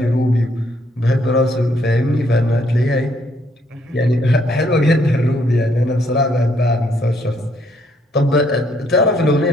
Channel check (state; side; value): normal; both; correlation 0.69